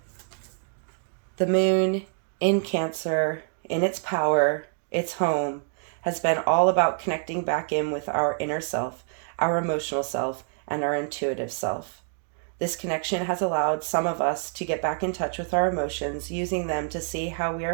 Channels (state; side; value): silent; left; 60 dB below the other